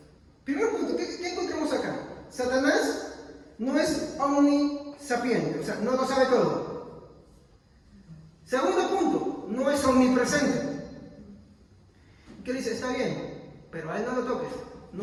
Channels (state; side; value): identical; both; correlation 1.00